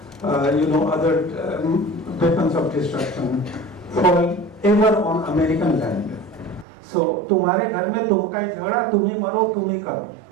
other weapons of destruction fall ever on American land. So, तुम्हारे घर में तुम का झगड़ा, तुम ही मरो, तुम ही करो.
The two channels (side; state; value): left; drops out; at 6.7 s